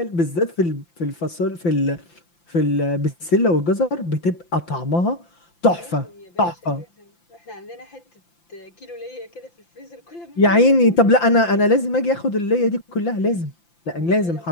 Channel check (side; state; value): right; late; 5.8 ms